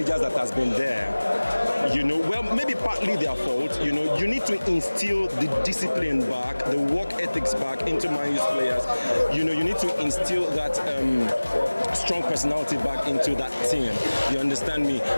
that has been there. You know, well, maybe partly their fault. You know, you need to instill the discipline back, the work ethics back into Man U's players. You know, you need to instill that strong personality back into that team. You understand me?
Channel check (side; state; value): both; inverted; correlation -1.00